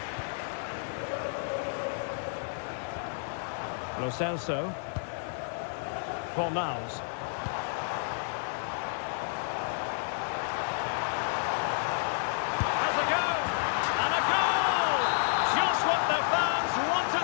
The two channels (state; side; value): silent; right; digital silence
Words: Lo Celso. Fornals. Has a go! And a goal! Just what the fans